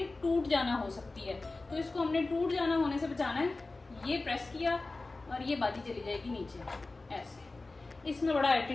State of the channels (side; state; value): right; quieter; 3.3 dB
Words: टूट जाना हो सकती है, तो इसको हमने टूट जाना होने से बचाना है। ये प्रेस किया और ये बाजी चली जाएगी नीचे ऐसे। इसमें बड़ा